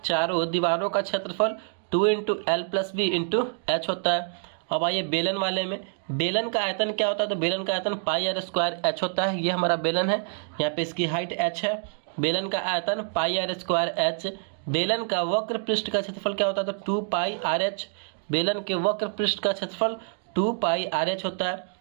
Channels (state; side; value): silent; left; 60 dB below the other